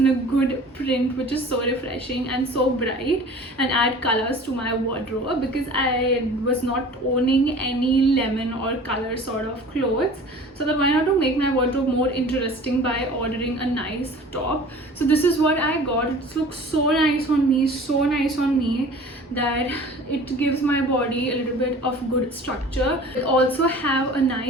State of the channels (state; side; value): normal; both; correlation 0.44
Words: a good print which is so refreshing and so bright and add colors to my wardrobe? Because I was not owning any lemon or color sort of clothes, so that why not to make my wardrobe more interesting by ordering a nice top. So this is what I got. It looks so nice on me, that it gives my body a little bit of good structure. It also have a